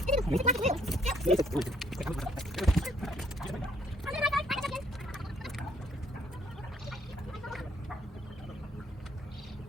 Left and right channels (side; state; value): both; normal; correlation 0.66